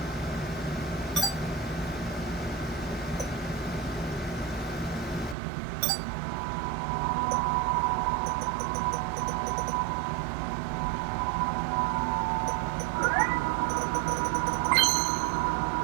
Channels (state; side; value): drops out; left; at 5.4 s